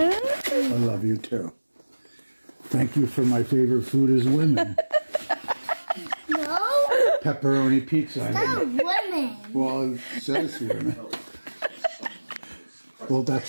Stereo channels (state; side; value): inverted; both; correlation -1.00